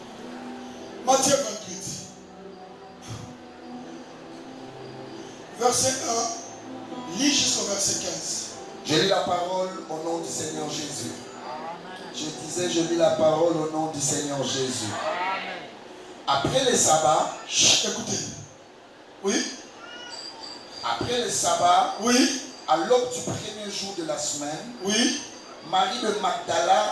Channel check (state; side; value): identical; both; correlation 1.00